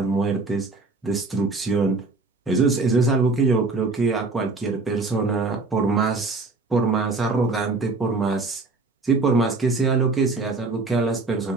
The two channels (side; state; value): left; quieter; 3.6 dB